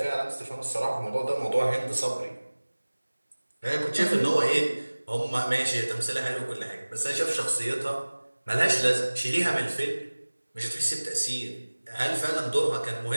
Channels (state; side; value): inverted; both; correlation -1.00